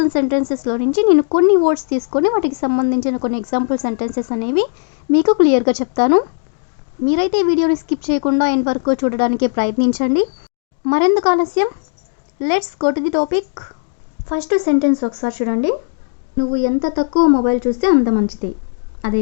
అండ్ సెంటెన్సెస్లో నుంచి నేను కొన్ని వర్డ్స్ తీసుకొని వాటికి సంబంధించిన కొన్ని ఎగ్జాంపుల్ సెంటెన్సెస్ అనేవి మీకు క్లియర్గా చెప్తాను. మీరైతే ఈ వీడియోని స్కిప్ చేయకుండా ఎండ్ వరకు చూడడానికి ప్రయత్నించండి. మరెందుకు ఆలస్యం, let's go to the topic. First sentence ఒకసారి చూడండి. నువ్వు ఎంత తక్కువ మొబైల్ చూస్తే అంత మంచిది.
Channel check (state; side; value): silent; right; digital silence